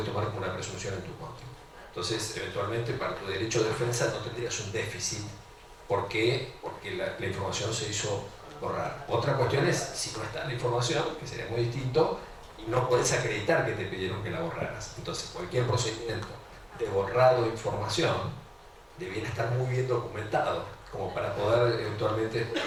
tomar como una presunción en tu contra. Entonces, eventualmente, para tu derecho de defensa no tendrías un déficit. ¿Por qué? Porque la información se hizo borrar. Otra cuestión es si no está la información, que sería muy distinto, y no puedes acreditar que te pidieron que la borraras. Entonces, cualquier procedimiento de borrado de información debiera estar muy bien documentado, como para poder eventualmente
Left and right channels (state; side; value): identical; both; correlation 1.00